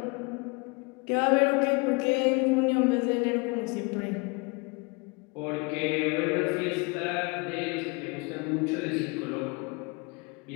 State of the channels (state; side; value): quieter; right; 29.4 dB